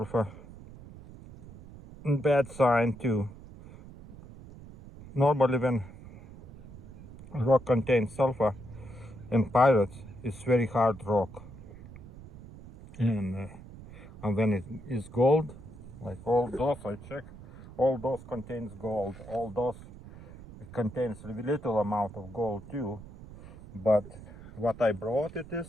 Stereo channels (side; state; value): right; noise; rumble, 17 dB below the sound